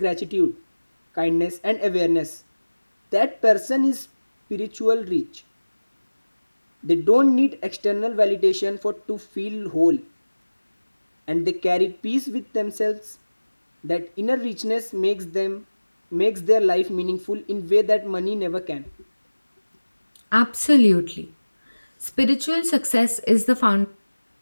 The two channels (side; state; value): both; inverted; correlation -1.00